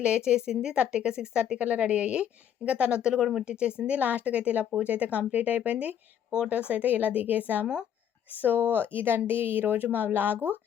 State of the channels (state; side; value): quieter; right; 9.4 dB